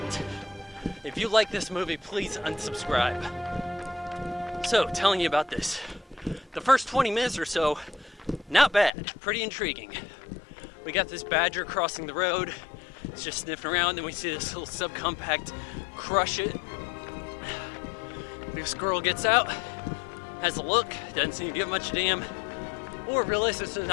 If you like this movie, please unsubscribe. So, telling you about this. The first 20 minutes or so, not bad, pretty intriguing. We got this badger crossing the road. It's just sniffing around, then we see this little subcompact crush it. This girl gets out, has a look, doesn't seem to give much a damn, or realizes there's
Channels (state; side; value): drops out; right; at 8.9 s